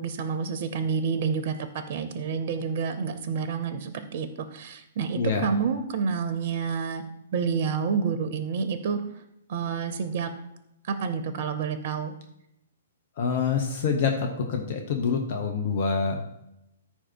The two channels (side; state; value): both; inverted; correlation -0.38